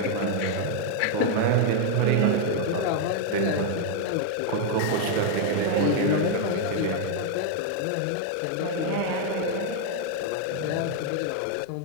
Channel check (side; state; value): both; different; correlation 0.01